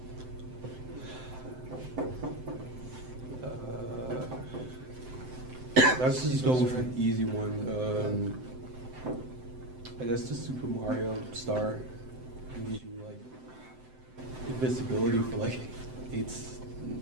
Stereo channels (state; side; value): late; left; 7.8 ms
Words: let's just go with an easy one. I guess the Super Mario Star gives you like invisibility for like